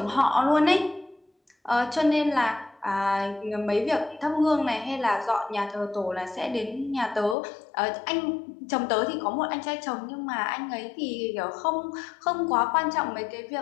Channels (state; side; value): drops out; right; at 7.4 s